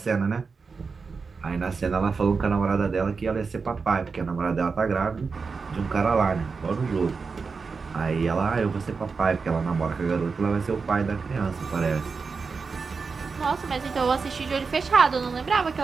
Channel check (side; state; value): left; quieter; 4.9 dB